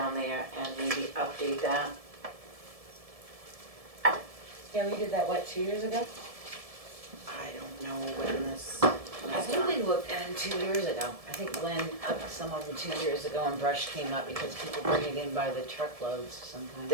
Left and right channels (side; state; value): left; late; 1.7 ms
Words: there and maybe update that. Yeah, we did that, what, 2 years ago? I don't know when this I was think we done. looked at it 2 years ago. I think Glenn upped some of them 2 years ago and brush came up because people bring it in by the truckloads sometimes.